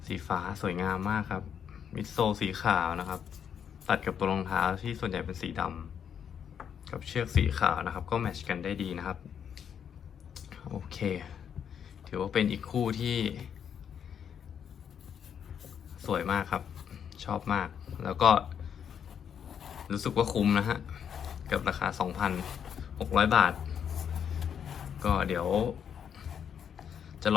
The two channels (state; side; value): quieter; right; 8.1 dB